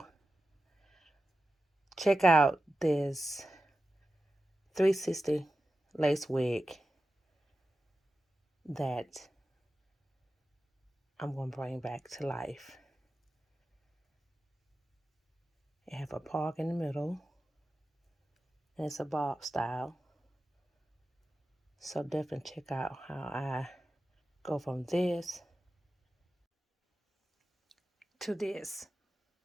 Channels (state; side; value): normal; both; correlation 0.93